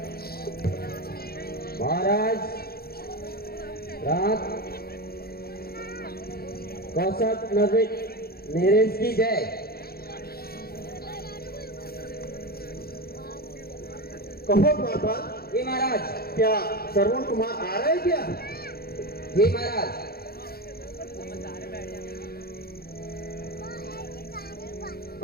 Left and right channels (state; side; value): late; right; 0.44 ms